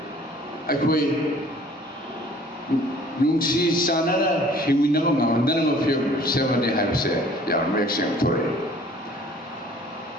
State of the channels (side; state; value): both; normal; correlation 0.53